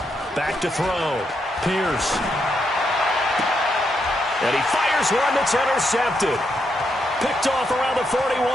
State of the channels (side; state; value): both; normal; correlation 0.80